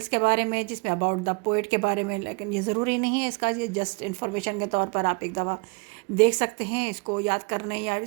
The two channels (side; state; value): left; quieter; 31.4 dB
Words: के बारे में, जिसमें अबाउट द पोएट के बारे में, लेकिन ये ज़रूरी नहीं है इसका, ये जस्ट इन्फॉर्मेशन के तौर पर आप एक दफ़ा देख सकते हैं। इसको याद करने या